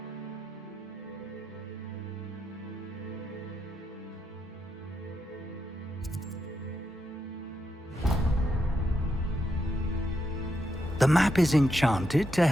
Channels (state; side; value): normal; both; correlation 0.82